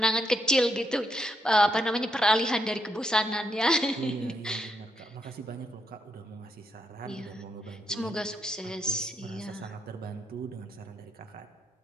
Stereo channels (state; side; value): normal; both; correlation 0.78